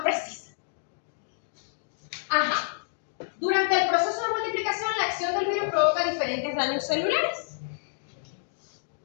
precisa. Ajá. Durante el proceso de multiplicación, la acción del virus provoca diferentes daños celulares.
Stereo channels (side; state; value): right; silent; digital silence